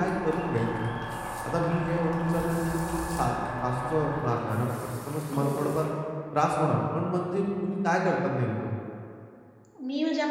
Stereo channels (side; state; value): both; identical; correlation 1.00